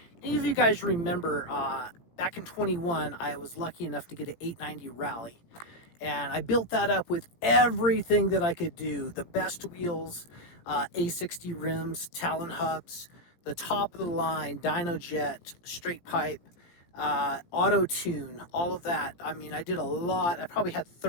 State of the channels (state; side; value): late; right; 17 ms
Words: Any of you guys remember back in 21, I was lucky enough to get an 890 Rally, and I built that up with everything that I could do. The best wheels, A60 rims, Talon hubs, the top of the line, Dyno Jet, straight pipe, auto tune, all of that. I mean, I did a lot. I probably had